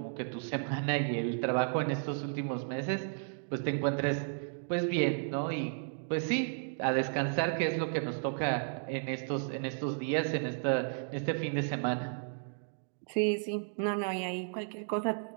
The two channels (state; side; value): silent; left; digital silence